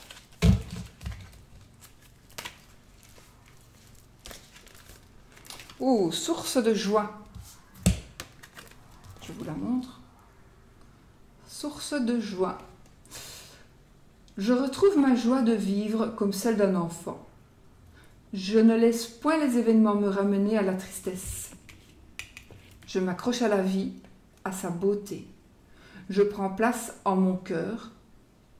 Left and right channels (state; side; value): identical; both; correlation 1.00